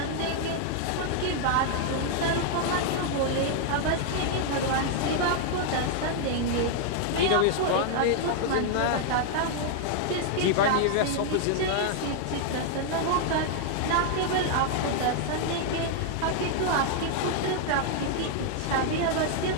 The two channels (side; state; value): both; different; correlation 0.00